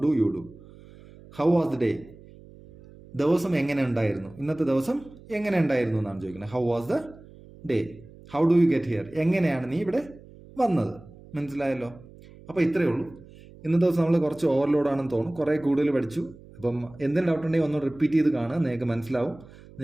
do you do. How was the day, ദിവസം എങ്ങനെ ഉണ്ടായിരുന്നു, ഇന്നത്തെ ദിവസം എങ്ങനെ ഉണ്ടായിരുന്നു എന്നാണ് ചോദിക്കുന്നത്. How was the day. How do you get here, എങ്ങനെയാണ് നീ ഇവിടെ വന്നത്. മനസ്സിലായല്ലോ? അപ്പോൾ ഇത്രയേ ഉള്ളൂ. ഇന്നത്തെ ദിവസം നമ്മൾ കുറച്ച് ഓവർലോഡാണെന്ന് തോന്നും, കുറേ കൂടുതൽ പഠിച്ചു. അപ്പം എന്തെങ്കിലും ഡൗട്ട് ഉണ്ടെങ്കിൽ ഒന്ന് റിപ്പീറ്റ് ചെയ്ത് കാണുക, നിങ്ങൾക്ക് മനസ്സിലാവും.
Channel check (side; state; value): right; noise; hum, 21 dB below the sound